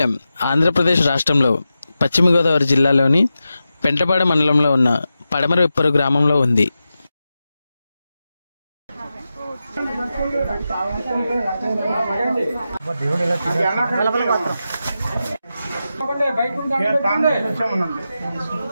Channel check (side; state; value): both; inverted; correlation -0.91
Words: ఆంధ్రప్రదేశ్ రాష్ట్రంలో పశ్చిమ గోదావరి జిల్లాలోని పెంటపాడ మండలంలో ఉన్న పడమర ఉప్పరు గ్రామంలో ఉంది.